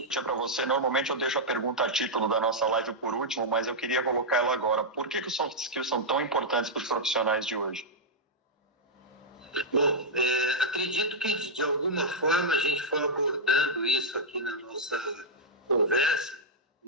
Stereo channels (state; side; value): normal; both; correlation -0.07